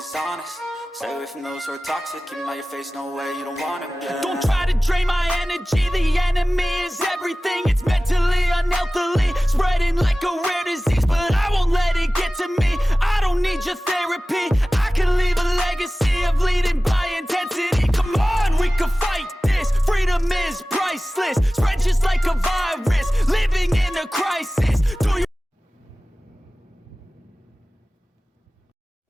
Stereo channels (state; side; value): normal; both; correlation 0.97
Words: honest. Stay away from those who are toxic. Keep them out your face, no way, you don't want it, yeah. Don't try to drain my energy. The enemy is everything. It's mentally, unhealthily spreading like a rare disease, but I won't let it get to me. I don't need your therapy. I can leave a legacy of leading by intensity. Come on, we can fight this. Freedom is priceless. Spread just like a virus. Living in a crisis. Do you